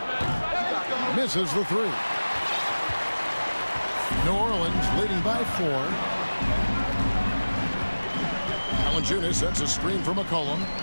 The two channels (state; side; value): inverted; both; correlation -1.00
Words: Misses the 3. New Orleans leading by 4. Valanciunas sets a screen for McCollum.